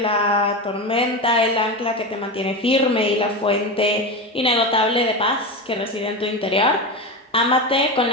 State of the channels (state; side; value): normal; both; correlation 0.20